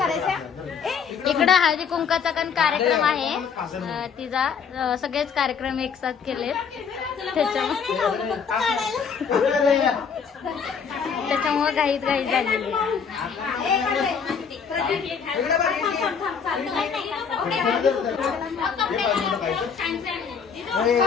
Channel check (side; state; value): right; quieter; 6.5 dB